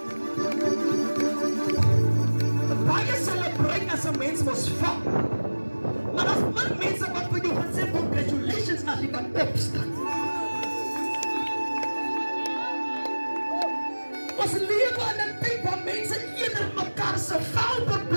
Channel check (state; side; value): inverted; both; correlation -1.00